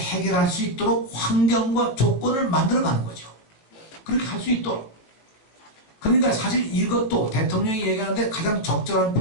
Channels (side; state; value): right; late; 18 ms